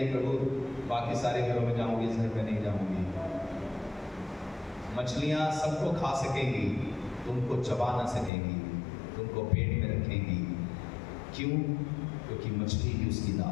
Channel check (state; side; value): drops out; right; at 8.3 s